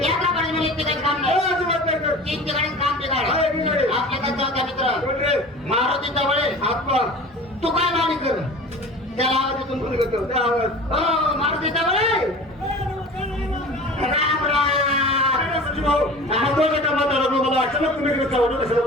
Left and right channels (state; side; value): normal; both; correlation 0.39